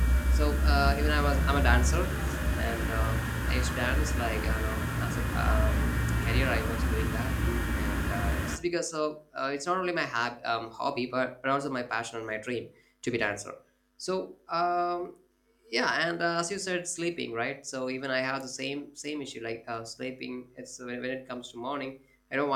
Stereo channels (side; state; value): both; identical; correlation 1.00